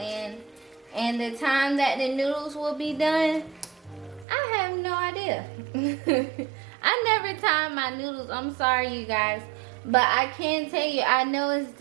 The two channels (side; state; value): left; drops out; at 4.2 s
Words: And the time that the noodles will be done, I have no idea. I never time my noodles. I'm sorry, you guys. But I can tell you, I know it's